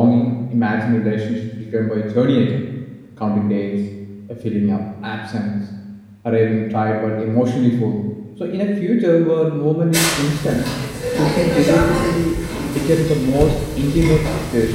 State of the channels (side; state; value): both; identical; correlation 1.00